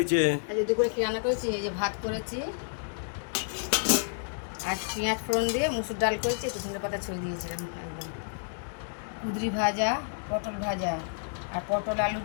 আজকে দুপুরে কি রান্না করেছি? এই যে ভাত করেছি, আর পেঁয়াজ ফোড়ন দিয়ে মুসুর ডাল করেছি, একটু ধনে পাতা ছড়িয়ে দিয়েছিলাম একদম। কুঁদরি ভাজা, পটল ভাজা, আর পটল আলু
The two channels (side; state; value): right; silent; digital silence